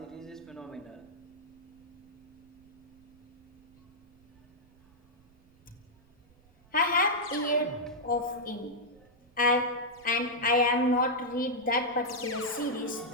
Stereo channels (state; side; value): noise; right; rumble, 29 dB below the sound